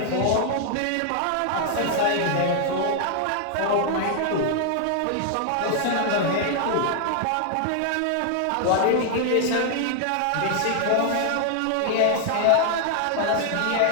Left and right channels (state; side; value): different; both; correlation 0.00